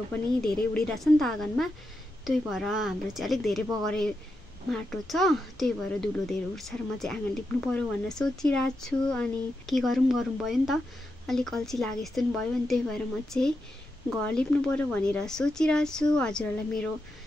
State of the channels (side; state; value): both; normal; correlation 0.86